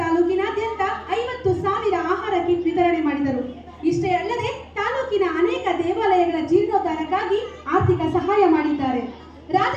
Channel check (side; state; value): both; identical; correlation 1.00